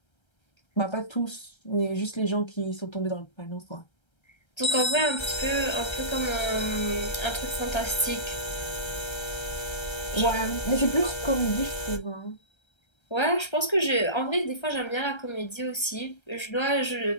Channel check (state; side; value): late; right; 1.3 ms